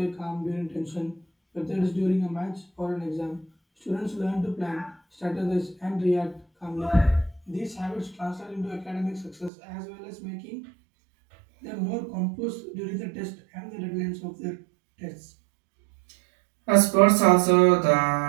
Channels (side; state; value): left; drops out; at 9.5 s